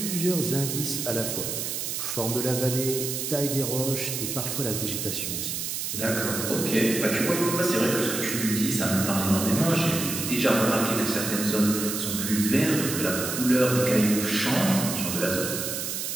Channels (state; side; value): noise; right; hiss, 3 dB below the sound